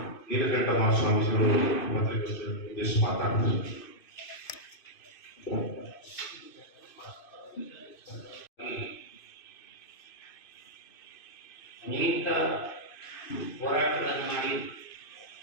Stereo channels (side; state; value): right; late; 2.5 ms